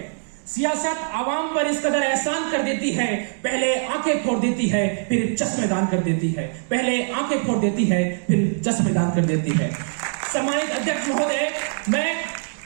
सियासत आवाम पर इस कदर एहसान कर देती है, पहले आंखें फोड़ देती है फिर चश्मेदान कर देती है, पहले आंखें फोड़ देती है फिर चश्मेदान कर देती है। सम्मानित अध्यक्ष महोदय, मैं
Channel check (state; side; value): silent; left; digital silence